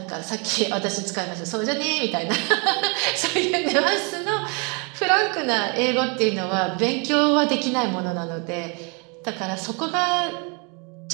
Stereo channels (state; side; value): quieter; left; 33.4 dB